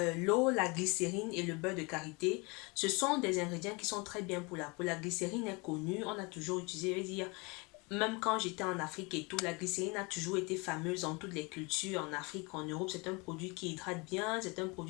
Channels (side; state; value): right; quieter; 28.3 dB